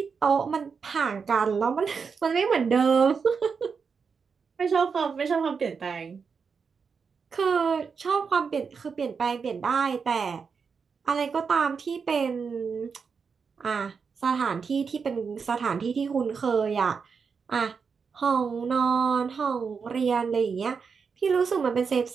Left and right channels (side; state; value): left; quieter; 5.7 dB